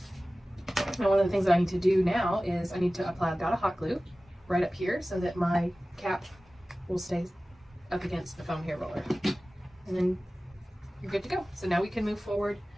Now one of the things that I need to do now is I need to apply a dot of hot glue right up here so that my cap will stay up against the foam hair roller. And then you're good to go. So now we can move forward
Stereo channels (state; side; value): normal; both; correlation 0.97